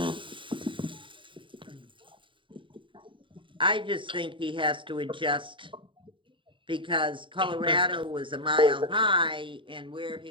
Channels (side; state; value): left; late; 0.24 ms